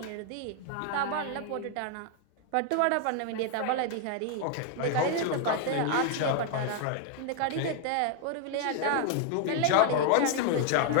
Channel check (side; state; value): both; different; correlation 0.00